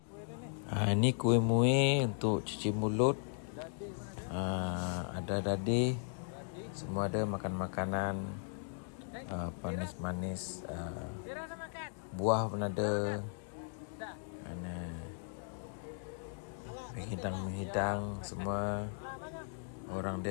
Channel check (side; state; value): right; silent; digital silence